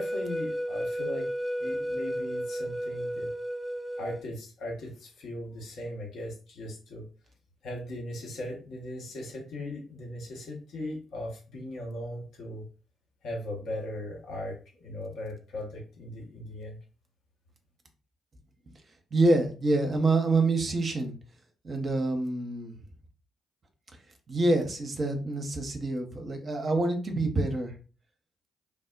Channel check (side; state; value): both; normal; correlation 0.85